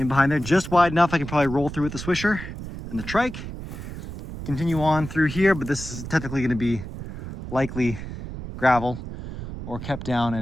behind there, just wide enough I can probably roll through with the swisher and the trike. Continue on through here, but this is technically going to be likely gravel or kept down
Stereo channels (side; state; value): right; noise; rumble, 10 dB below the sound